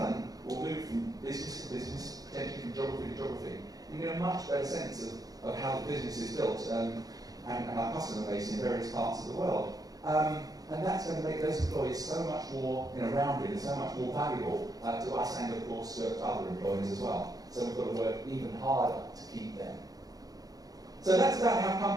will move from business to business, potentially from geography to geography. You get a much better sense of how the business is built and our customer base in various parts of the world. And that's going to make those employees so much more, you know, rounded and so much more valuable to us and, of course, to other employees as well. So we've got to work even harder to keep them. So that's about how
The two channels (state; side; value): late; left; 0.18 ms